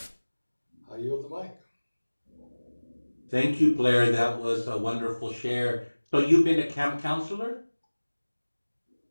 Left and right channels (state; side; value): inverted; both; correlation -1.00